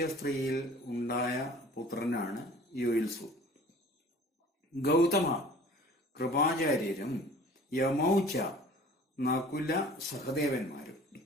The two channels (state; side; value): normal; both; correlation 0.46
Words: ഉണ്ടായ പുത്രനാണ് യുയുത്സു. ഗൗതമ, കൃപാചാര്യരും യമൗച്ച, നകുല സഹദേവന്മാരും.